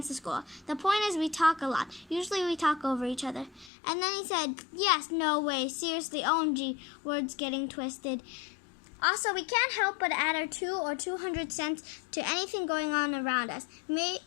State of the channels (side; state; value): right; drops out; at 3.7 s